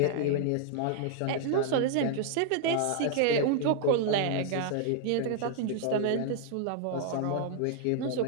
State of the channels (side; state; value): both; different; correlation 0.00